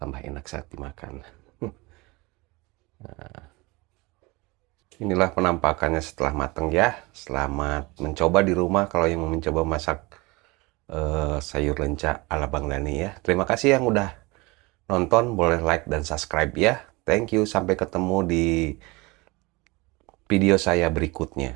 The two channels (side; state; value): left; quieter; 24.3 dB